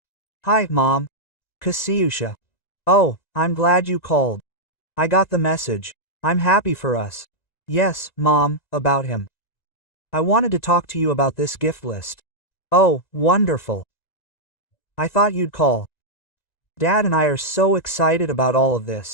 Hi, Mom. Kasiusha. Oh, I'm glad you called. I got the message. I'm happy for us. Yes, Mom, about him. I wanted to talk to you about this gift list. Oh, wonderful. I thought you'd call. Dad and I are so excited about all of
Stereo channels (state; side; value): late; right; 1.9 ms